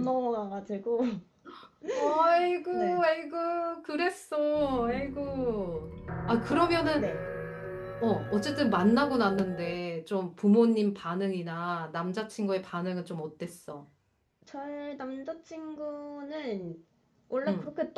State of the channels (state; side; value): identical; both; correlation 1.00